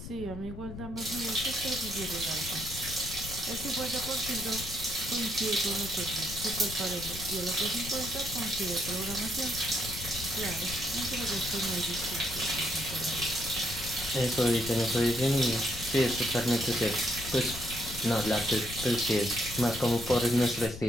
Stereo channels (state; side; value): noise; left; rumble, 10 dB below the sound